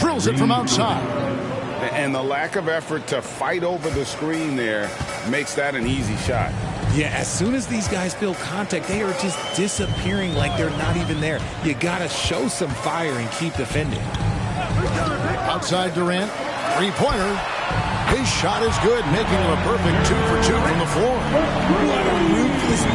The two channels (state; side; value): identical; both; correlation 1.00